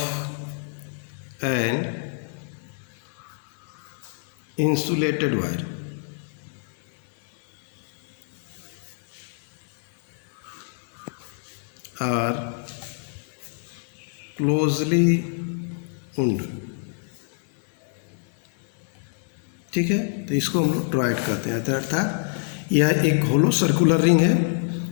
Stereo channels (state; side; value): silent; right; digital silence